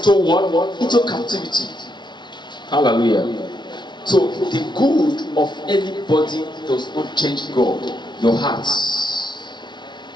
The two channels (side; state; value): right; late; 0.21 ms